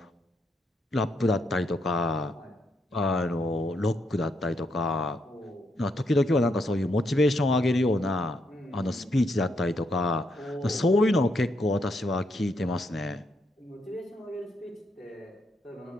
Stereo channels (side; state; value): both; normal; correlation 0.78